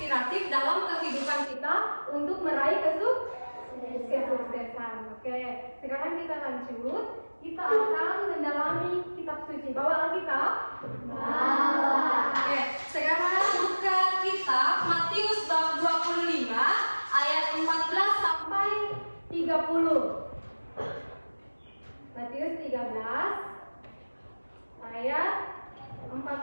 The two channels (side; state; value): both; inverted; correlation -1.00